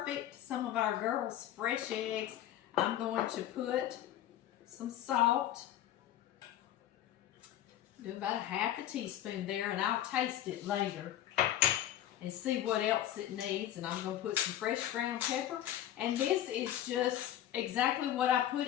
Some of our girls' fresh eggs. I'm going to put some salt. Do about 1/2 teaspoon there, and I'll taste it later and see what else it needs. And I'm going to put some fresh ground pepper. And this is just exactly what I put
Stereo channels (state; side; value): quieter; right; 12.0 dB